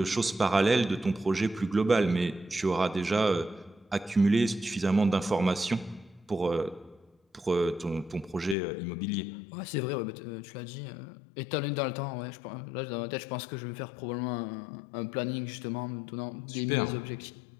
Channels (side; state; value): right; drops out; at 8.6 s